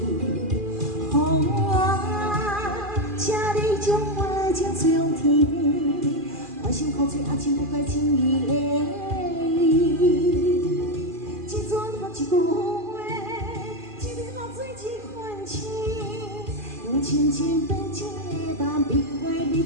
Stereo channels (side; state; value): left; late; 2.4 ms